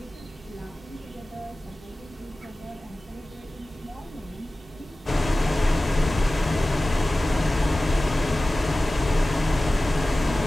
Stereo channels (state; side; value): normal; both; correlation 0.97